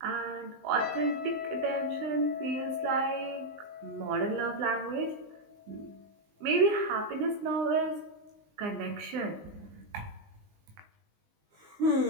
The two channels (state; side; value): late; left; 19 ms